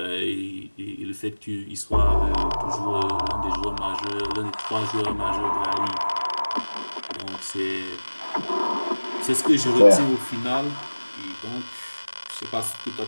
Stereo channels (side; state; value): both; inverted; correlation -1.00